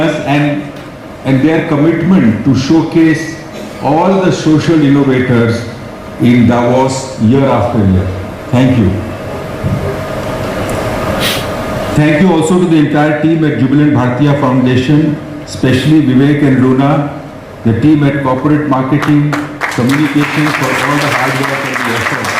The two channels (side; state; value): both; identical; correlation 1.00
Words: and their commitment to showcase all the social innovators in Davos year after year. Thank you. Thank you also to the entire team at Jubilant Bhartiya Foundation, especially Vivek and Luna, the team at Corporate Marketing, Communications for all the hard work and the effort.